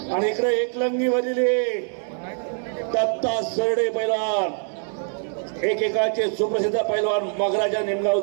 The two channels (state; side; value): silent; left; digital silence